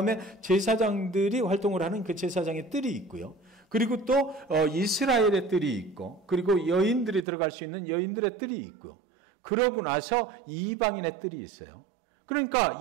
제사장들이 활동을 하는 그 제사장의 뜰이 있고요. 그리고 또 이스라엘의 뜰이 있고 그리고 여인들이 들어갈 수 있는 여인들의 뜰이 있고 그러고 나서 이방인의 뜰이 있어요. 그러니까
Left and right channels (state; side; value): drops out; left; at 7.2 s